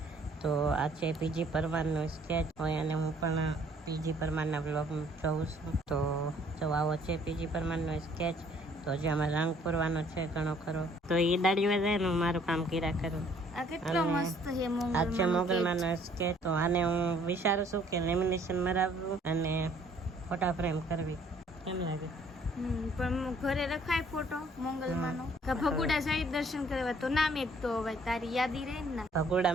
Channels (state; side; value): normal; both; correlation 0.60